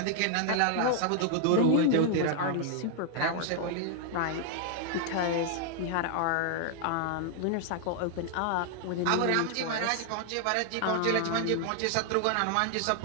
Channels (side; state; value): both; different; correlation 0.00